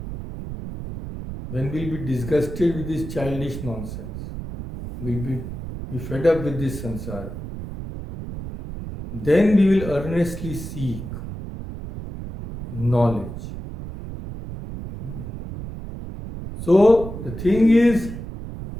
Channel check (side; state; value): right; noise; rumble, 9 dB below the sound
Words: when we will be disgusted with this childish nonsense, we will be fed up with this samsara. Then we will earnestly seek knowledge. So, the thing is,